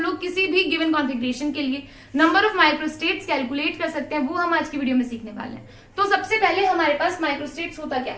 किसी भी गिवन कॉन्फ़िगरेशन के लिए नंबर ऑफ माइक्रोस्टेट्स कैलकुलेट कर सकते हैं, वो हम आज की वीडियो में सीखने वाले हैं। तो सबसे पहले हमारे पास माइक्रोस्टेट्स होता क्या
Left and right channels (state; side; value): identical; both; correlation 1.00